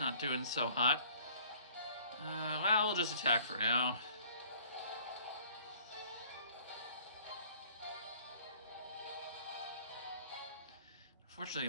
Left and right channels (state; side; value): inverted; both; correlation -0.53